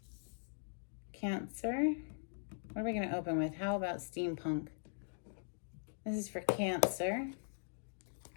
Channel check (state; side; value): silent; right; digital silence